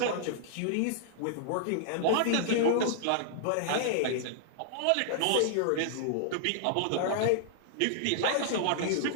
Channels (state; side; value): different; both; correlation -0.01